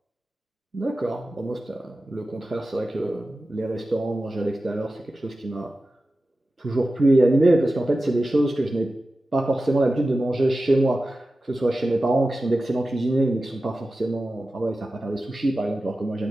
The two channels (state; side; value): normal; both; correlation 0.94